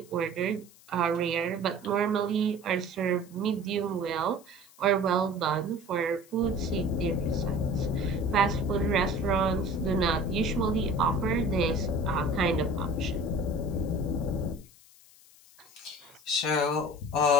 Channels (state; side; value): noise; left; hiss, 25 dB below the sound